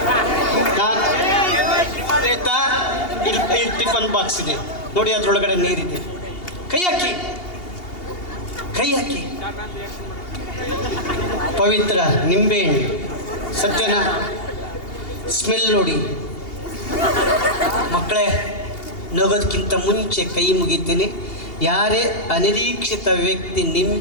ಇಲ್ಲಿ ಟಿಫನ್ ಬಾಕ್ಸ್ ಇದೆ ನೋಡಿ, ಅದ್ರೊಳಗಡೆ ನೀರಿದೆ. ಕೈ ಹಾಕಿ, ಕೈ ಹಾಕಿ. ಪವಿತ್ರ ನಿಂಬೆಹಣ್ಣು ಸತ್ಯನ ಸ್ಮೆಲ್ ನೋಡಿ. ಮಕ್ಕಳೇ, ನಗೋದಕ್ಕಿಂತ ಮುಂಚೆ ಕೈ ಮುಗಿತೀನಿ. ಯಾರೇ ಅನಿರೀಕ್ಷಿತ ವ್ಯಕ್ತಿ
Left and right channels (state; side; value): late; right; 2.8 ms